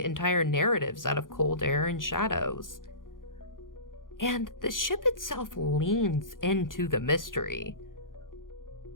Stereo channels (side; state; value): right; late; 0.90 ms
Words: entire narratives out of cold air and shadows. And the ship itself leans into the mystery.